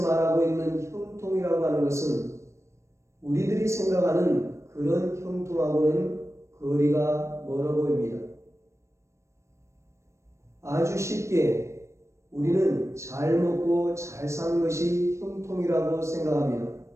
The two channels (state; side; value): late; left; 0.14 ms